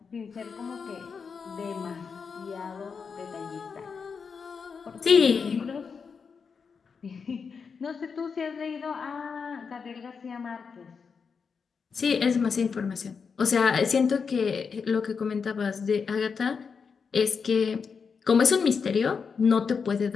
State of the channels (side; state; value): right; quieter; 5.7 dB